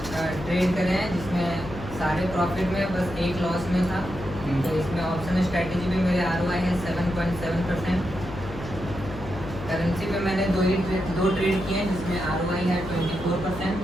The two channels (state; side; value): noise; left; hum, 12 dB below the sound